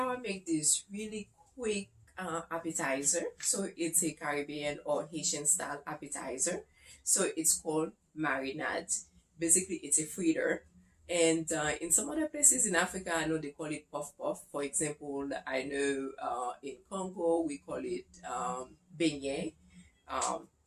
I make this really quick appetizer. So it's a Caribbean or Haitian style appetizer. So it's called Marinades. Basically, it's a fritter. And in some other places in Africa, I know they call it puff puff. For example, I know in Congo we call it beignet. Um,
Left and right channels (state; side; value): identical; both; correlation 1.00